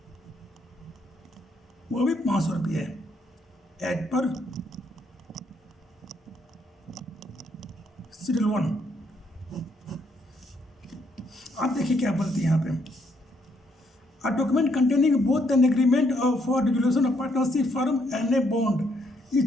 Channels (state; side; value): normal; both; correlation 0.73